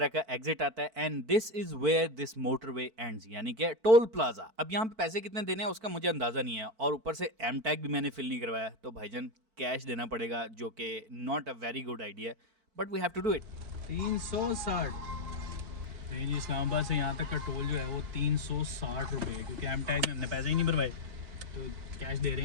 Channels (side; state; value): left; late; 4.5 ms